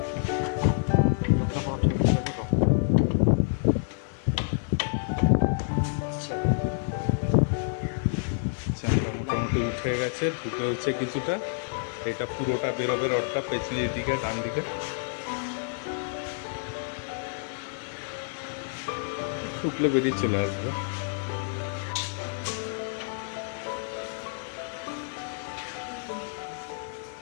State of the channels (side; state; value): right; silent; 59 dB below the other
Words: চাকা মোটামুটি উঠে গেছে, ঢুকে হচ্ছে কিছুটা। এটা পুরোটা বেরোবে রডটা পেছনের দিকে, ডান দিকে ঢুকলে বেরিয়ে চলে আসবে।